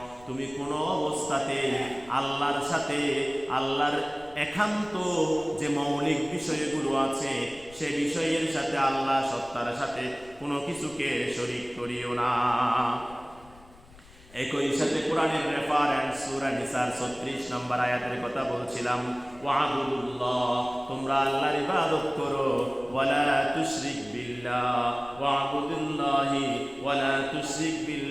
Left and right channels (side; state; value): left; noise; rumble, 23 dB below the sound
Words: তুমি কোনো অবস্থাতে আল্লাহর সাথে, আল্লাহর একান্ত যে মৌলিক বিষয়গুলো আছে সে বিষয়ের সাথে, আল্লাহ সত্তার সাথে কোনো কিছুকে শরীক করিও না। একই সাথে কোরআনের রেফারেন্স সূরা নিসার 36 নম্বর আয়াতের কথা বলছিলাম, ওয়া'বুদুল্লাহ, তোমরা আল্লাহর ইবাদত করো, ওয়ালা তুশরিক বিল্লাহ, ওয়া'বুদুল্লাহি ওয়ালা তুশরিক